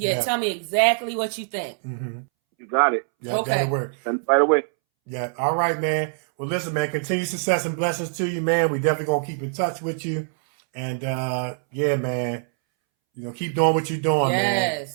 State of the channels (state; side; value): silent; left; 63 dB below the other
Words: tell me exactly what you think. Mm-hmm. You got it. Yeah, that'll work. Send it right away. Yeah. All right, man. Well, listen, man, continued success and blessings to you, man. We definitely going to keep in touch with you. And, yeah, man, you know, keep doing what you're doing, man.